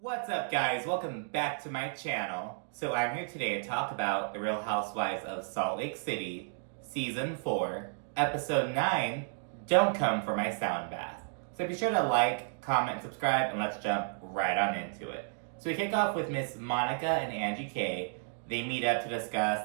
What's up, guys? Welcome back to my channel. So I'm here today to talk about The Real Housewives of Salt Lake City, Season 4, Episode 9, Don't Come for My Sound Bath. So be sure to like, comment, and subscribe, and let's jump right on into it. So we kick off with Miss Monica and Angie K. They meet up to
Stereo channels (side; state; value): left; silent; digital silence